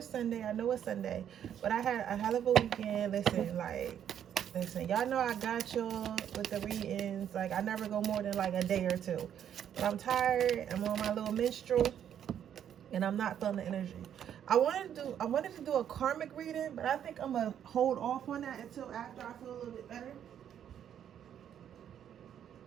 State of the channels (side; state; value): left; quieter; 9.5 dB